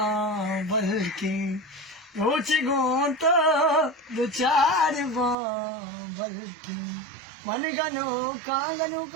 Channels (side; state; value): left; drops out; at 5.4 s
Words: के रोच गोत दुचार बाबल के मन गनो का